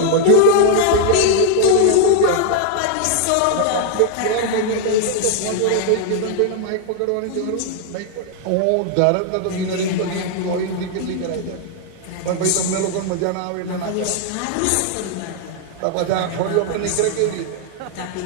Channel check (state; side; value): different; both; correlation 0.00